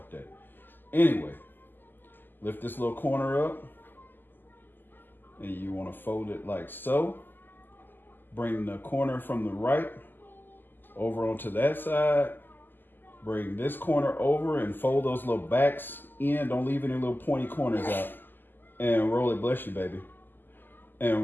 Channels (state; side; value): late; right; 0.091 ms